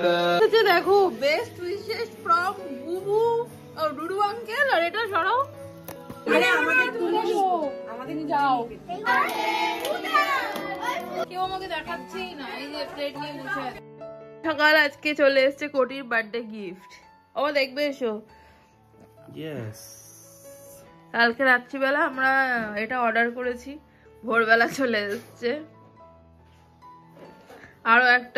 अच्छा देखो बेस्ट विशेस फ्रॉम बुबू और डुडू अंकल और এটা সরাও আরে আমাকে তুলে দাও আমাদের নিয়ে যাও কেউ আমাকে দেখাচ্ছেই না এই যে প্লেট নিয়ে বসে আছে সকাল আজকে চলে এসেছে কোটির বার্থডে গিফট ও দেখবে এসো यस কালকে রাত্রিবেলা আমরা এটা অর্ডার করেছি ভোরবেলা চলে এসেছে আরো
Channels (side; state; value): both; identical; correlation 1.00